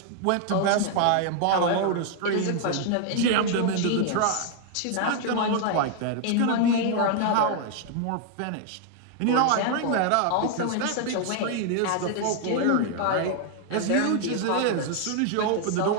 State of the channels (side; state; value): both; different; correlation 0.00